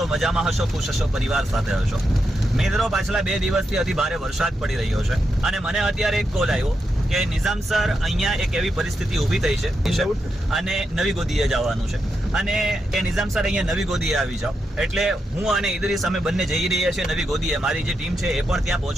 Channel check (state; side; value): normal; both; correlation 0.85